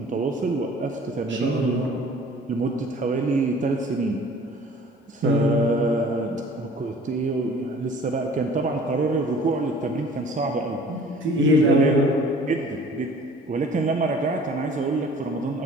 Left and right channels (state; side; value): normal; both; correlation 0.49